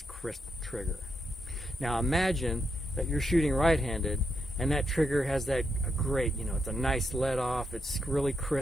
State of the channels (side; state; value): both; normal; correlation 0.81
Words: crisp trigger. Now imagine that you're shooting right-handed and that trigger has that great, it's a nice let off, it's really